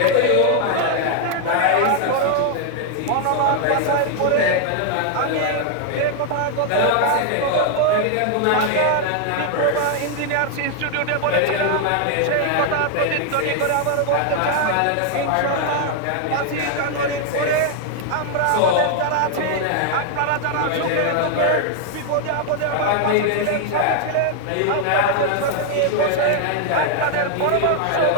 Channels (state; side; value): different; both; correlation 0.00